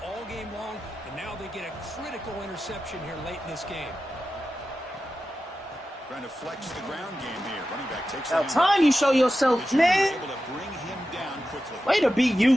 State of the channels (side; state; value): both; normal; correlation 0.92